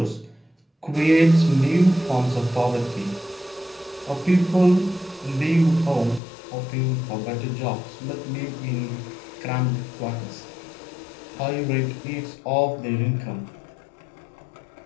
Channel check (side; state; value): right; drops out; at 6.2 s